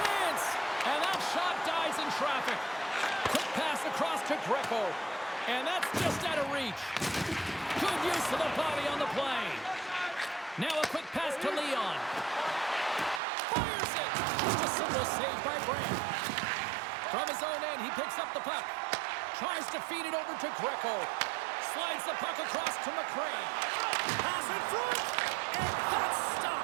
And that shot dies in traffic. Quick pass across to Greco. And that's just out of reach. Good use of the body on the play. Now a quick pass to Leon. Fires it! Just a simple save by Brandt. From his own end, he picks up the puck. Tries to feed it over to Greco. Slides the puck across to McCray. Pass in front, and that's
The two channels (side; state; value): left; drops out; at 13.2 s